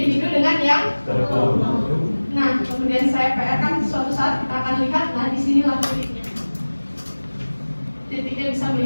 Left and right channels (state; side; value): inverted; both; correlation -1.00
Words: dengan yang nah, kemudian saya PR kan suatu saat kita akan lihat, nah disinilah titiknya. Titiknya bisa